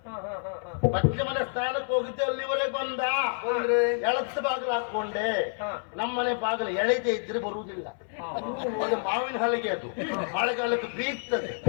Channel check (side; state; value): right; silent; 59 dB below the other